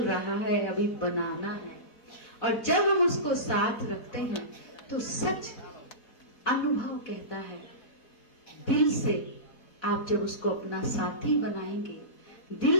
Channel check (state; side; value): late; right; 4.1 ms